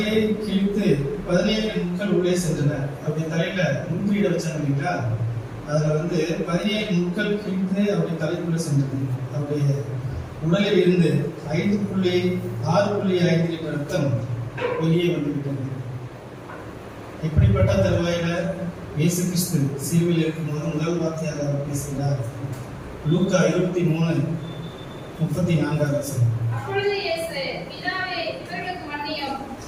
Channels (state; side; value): identical; both; correlation 1.00